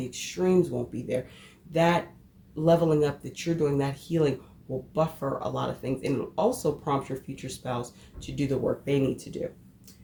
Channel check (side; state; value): both; identical; correlation 1.00